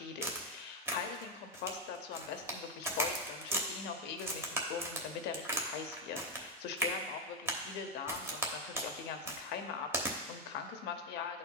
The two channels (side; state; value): both; normal; correlation 0.04